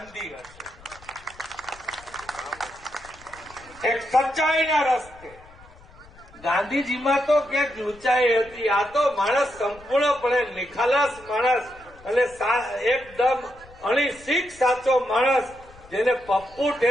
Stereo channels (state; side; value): noise; left; rumble, 23 dB below the sound